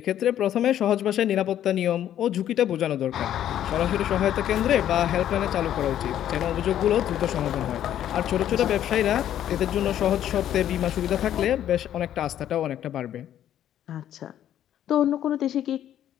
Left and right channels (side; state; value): right; quieter; 11.1 dB